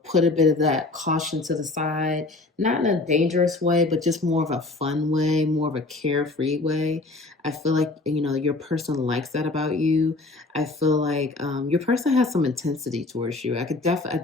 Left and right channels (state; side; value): quieter; right; 3.3 dB